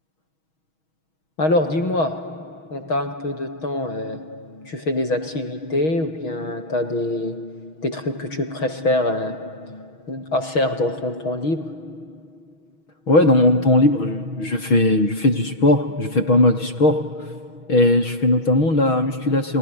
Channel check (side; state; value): right; late; 6.3 ms